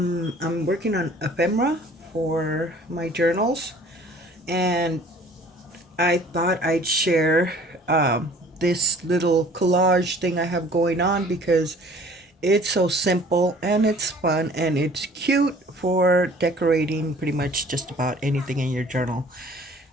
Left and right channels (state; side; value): normal; both; correlation 0.51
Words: working on ephemera for my journals, and I thought I'd share this little collage thing I have going on because it's so simple and it's fun and it's cute for decorating pretty much just about anything in your journal.